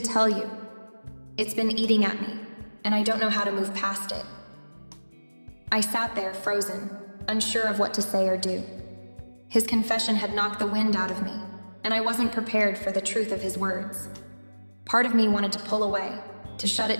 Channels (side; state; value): both; inverted; correlation -1.00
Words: tell you. It's been eating at me, and I don't know how to move past it." I sat there, frozen, unsure of what to say or do. His confession had knocked the wind out of me, and I wasn't prepared for the truth of his words. Part of me wanted to pull away, to shut